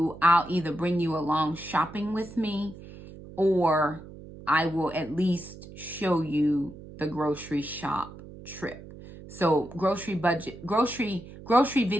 I'll either bring you along shopping with me, or I will at least show you the grocery shop trip. So grocery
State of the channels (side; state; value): right; noise; hum, 16 dB below the sound